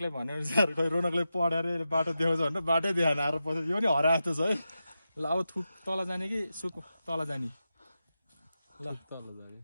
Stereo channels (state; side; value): inverted; both; correlation -0.90